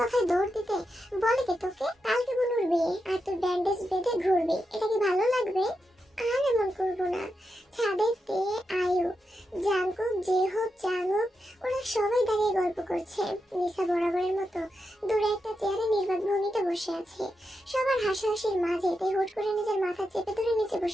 কথায় দৌড় দিতে বলে কে তোকে? কালকে বুনুর বিয়ে, আর তুই ব্যান্ডেজ বেঁধে ঘুরবি, এটা কি ভালো লাগবে? আর এমন করবো না। ছাদে তে, আয়ু, জাঙ্কুক, জেহোপ, জাঙ্গুক ওরা সবাই দাঁড়িয়ে গল্প করছে। নিসা বরাবরের মতো দূরে একটা চেয়ারে নির্বাক ভঙ্গিতে বসে আছে। সবার হাসাহাসির মাঝে তে হুট করে নিজের মাথা চেপে ধরে নিচে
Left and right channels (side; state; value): both; normal; correlation 0.87